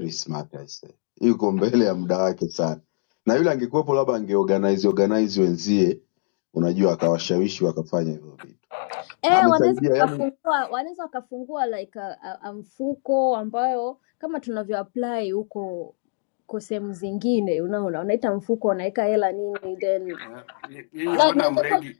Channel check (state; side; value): silent; right; digital silence